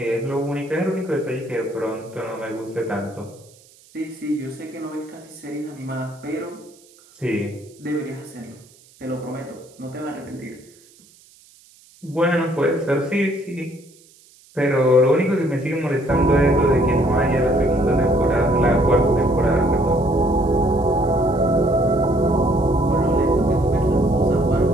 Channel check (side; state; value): right; noise; hiss, 28 dB below the sound